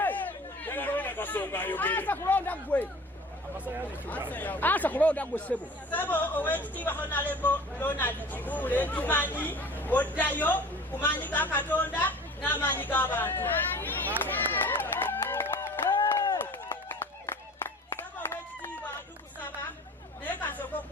Nakasonga ayogere asa kulonda gwe sebo owekitiibwa Honorable Ronald Kibule tumanyi oddayo kumanyi ga Katonda n'amaanyi g'abantu saba owekitiibwa tukusaba naye kasooka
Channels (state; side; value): normal; both; correlation 0.43